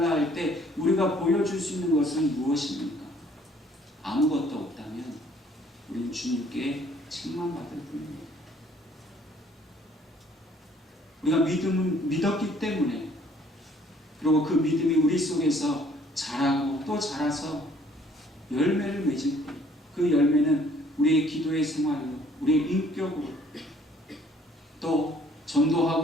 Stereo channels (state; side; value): normal; both; correlation 0.60